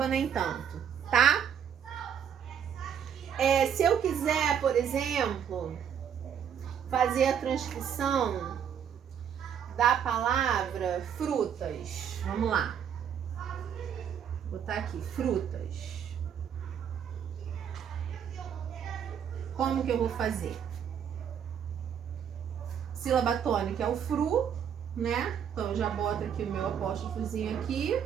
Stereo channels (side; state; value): left; quieter; 8.4 dB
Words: nem tanto, tá? Se eu quiser, por exemplo, fazer a transcrição da palavra frutas. Vamos lá. Vou botar aqui, frutas. Como que eu vou fazer? Sílaba tônica é o fru, né? Então eu já boto aqui o meu apóstrofozinho aqui.